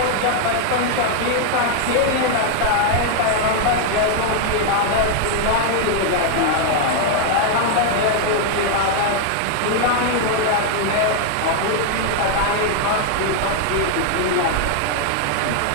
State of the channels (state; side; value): different; both; correlation 0.00